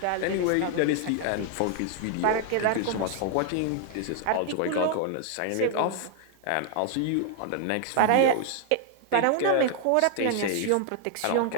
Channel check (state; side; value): different; both; correlation 0.00